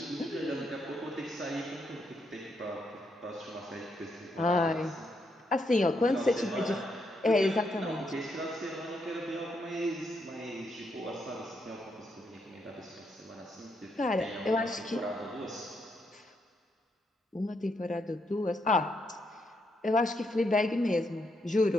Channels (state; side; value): normal; both; correlation 0.78